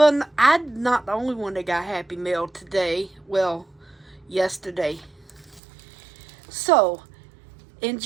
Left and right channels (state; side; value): drops out; left; at 5.6 s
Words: I'm not the only one that got Happy Mail today. Well, yesterday. So,